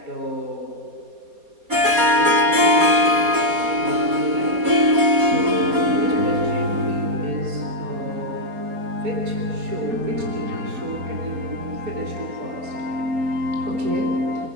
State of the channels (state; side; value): late; left; 4.1 ms